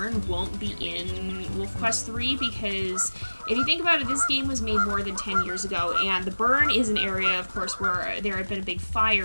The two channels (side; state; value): both; inverted; correlation -1.00